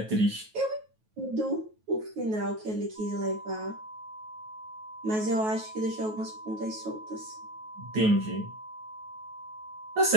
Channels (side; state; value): left; late; 9.3 ms